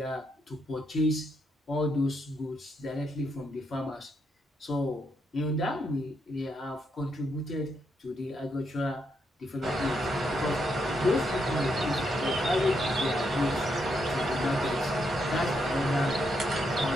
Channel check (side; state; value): both; normal; correlation 0.79